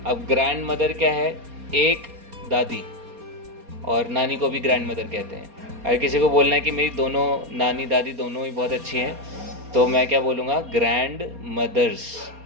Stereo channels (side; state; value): left; late; 4.3 ms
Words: अब ग्रैंड मदर क्या है, एक दादी, और नानी को भी ग्रैंड मदर कहते हैं। अगर किसी को बोलना है कि मेरी दोनों नानी दादी दोनों ही बहुत अच्छी हैं, तो मैं क्या बोलूँगा, ग्रैंड मदर्स,